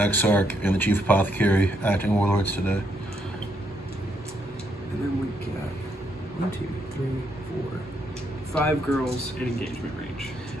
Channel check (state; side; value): normal; both; correlation 0.75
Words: and the Chief Apothecary acting Warlords today. And then we got 1, 2, 3, 4, 5 girls in engagement range.